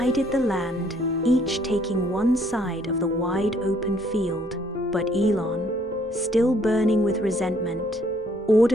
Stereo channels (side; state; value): both; normal; correlation 0.65